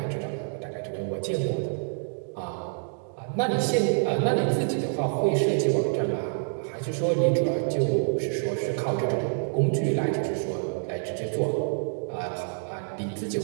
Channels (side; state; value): left; silent; digital silence